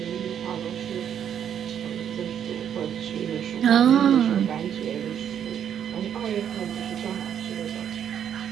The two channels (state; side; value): quieter; left; 9.1 dB